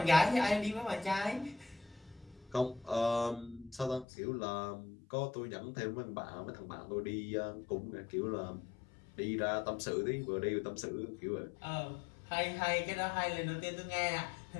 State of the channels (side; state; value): right; drops out; at 4.0 s